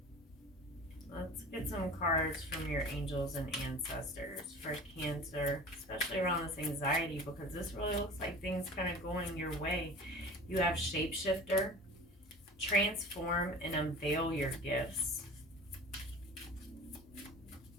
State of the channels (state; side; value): normal; both; correlation 0.38